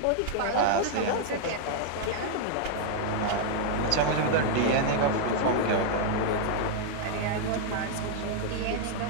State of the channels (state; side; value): different; both; correlation -0.01